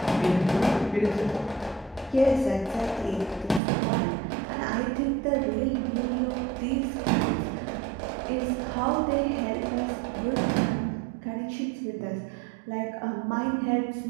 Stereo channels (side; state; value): left; drops out; at 3.6 s